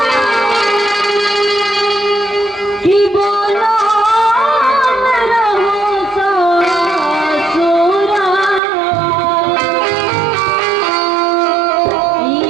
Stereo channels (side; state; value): left; drops out; at 8.6 s